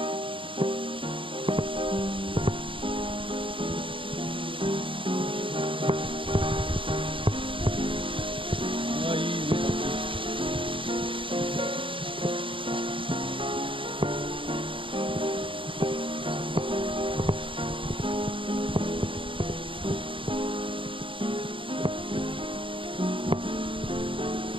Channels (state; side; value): late; left; 0.25 ms